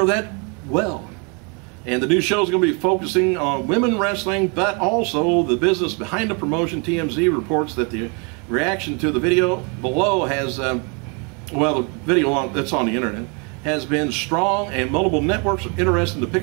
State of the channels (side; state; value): left; quieter; 34.0 dB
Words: that well. And the new show is going to be focusing on women wrestling, but also the business behind the promotion. TMZ reports that the reaction to the video below has, the video that's on the internet, has been strong, and multiple networks are interested in